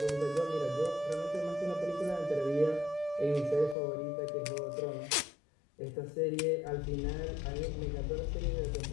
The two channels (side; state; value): right; drops out; at 3.8 s